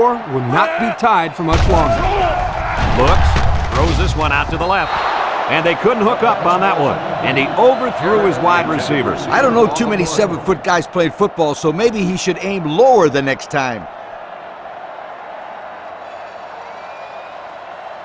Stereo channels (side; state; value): both; identical; correlation 1.00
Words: will not be tied for much longer. Looks, throws this one out to the left. And they couldn't hook up on that one. And he overthrew his wide receivers. I don't know too many 7-foot guys playing football, so maybe he should aim lower the next time.